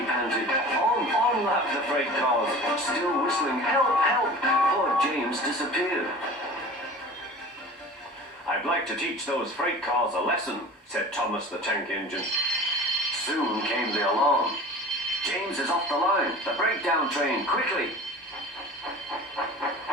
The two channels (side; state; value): both; normal; correlation 0.39